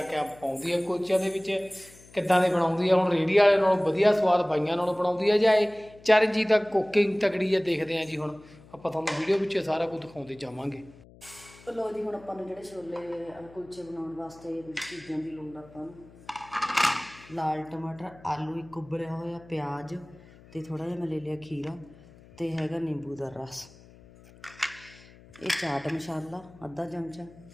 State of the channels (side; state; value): left; noise; hum, 23 dB below the sound